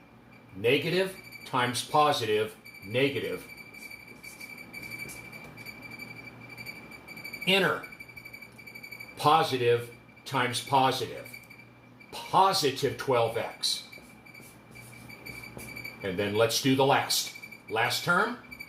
Negative times positive, negative. Inner. Positive times positive. Positive 12x. And then let's do the last. Last term,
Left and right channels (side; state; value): both; identical; correlation 1.00